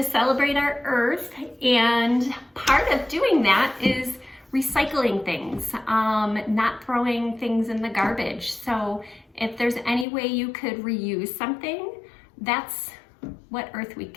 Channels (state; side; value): drops out; right; at 10.1 s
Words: celebrate our Earth, and part of doing that is recycling things, not throwing things in the garbage. So if there's any way you could reuse something, that's what Earth